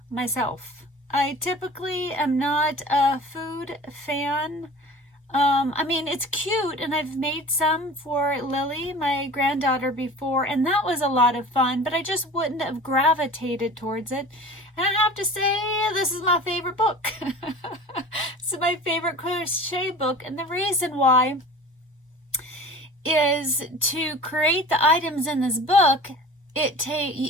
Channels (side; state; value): both; normal; correlation 0.40